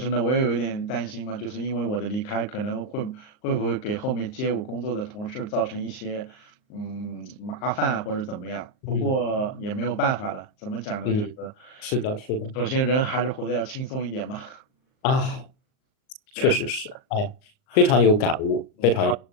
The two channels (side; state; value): right; late; 38 ms